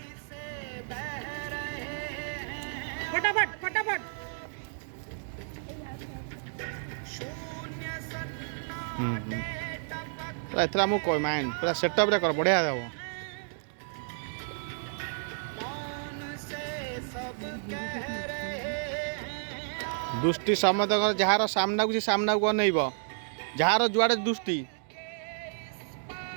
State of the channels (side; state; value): left; silent; digital silence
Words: फटाफट फटाफट पूरा एथरा मु कोई माइंड पूरा सेटअप रे कर बढ़िया देबो दुष्टि समत जार सामना को सामना को अनइब जार जुआड़े दुष्टि